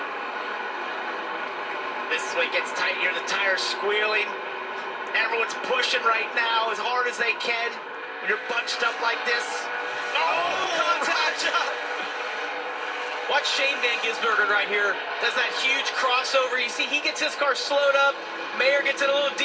This is when it gets tight here, the tires squealing. Everyone's pushing right now as hard as they can when you're bunched up like this. Oh, contact! Watch Shane Van Gisbergen right here. Does that huge crossover. You see, he gets his car slowed up. Mayer gets it a little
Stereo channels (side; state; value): both; identical; correlation 1.00